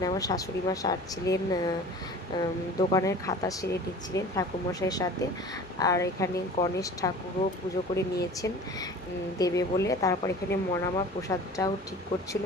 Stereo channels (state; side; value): normal; both; correlation 0.42